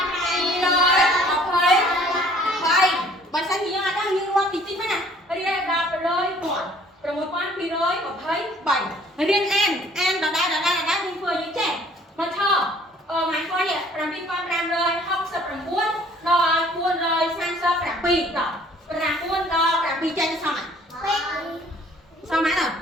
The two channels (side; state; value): both; normal; correlation 0.56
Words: បើសិនជាយើងអត់ដឹងយើងរាប់តិចៗហ្នឹងណារៀនដល់6,223រៀនអានដដែលយើងធ្វើយើងចេះមកឆម៉ាញ់គាត់នេះ7569ដល់437តោះ9ដល់7ចេញសមហើយសមហើយដល់